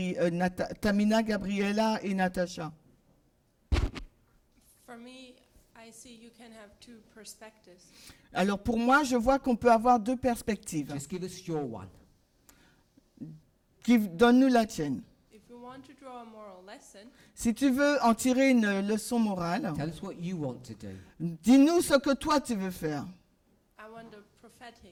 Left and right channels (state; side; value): identical; both; correlation 1.00